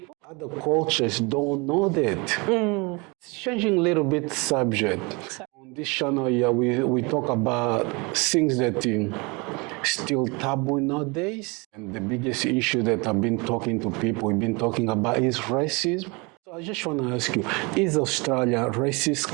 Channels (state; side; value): quieter; left; 28.4 dB